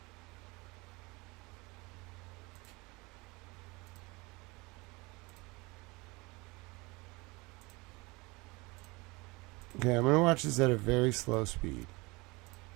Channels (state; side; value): quieter; left; 24.8 dB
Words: Okay, I'm going to watch this at a very slow speed.